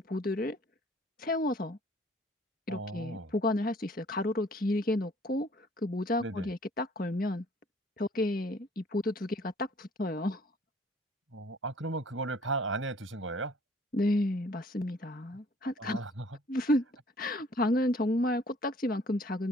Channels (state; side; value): normal; both; correlation 0.57